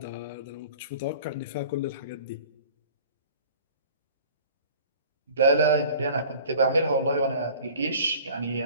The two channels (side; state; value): both; inverted; correlation -0.46